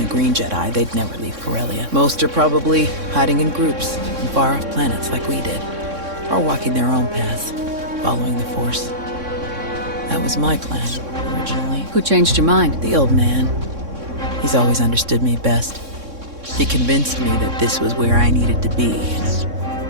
Green Jedi, they'd never leave Corellia. Most are probably hiding in groups on far-off planets like we did. Or walking their own path, following the Force. That was my plan, originally. Who changed your mind? The old man. He's always understood me best. He convinced me that this was where I needed to be,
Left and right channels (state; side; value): late; left; 3.6 ms